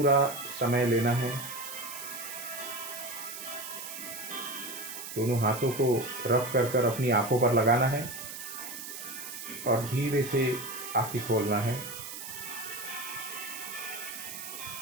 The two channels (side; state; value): right; noise; hiss, 9 dB below the sound